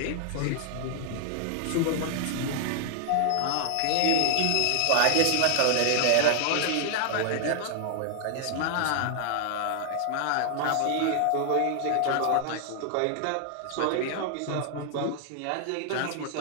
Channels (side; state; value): both; different; correlation 0.00